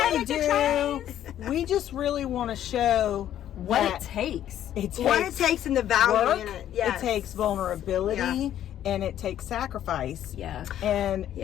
we do. We just really want to show What it takes. What it takes and the value in it. It takes vulnerability and it takes sacrifice. Yeah.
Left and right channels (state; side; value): quieter; right; 11.3 dB